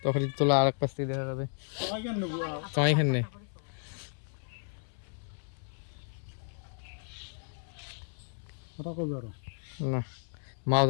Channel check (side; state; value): right; silent; 56 dB below the other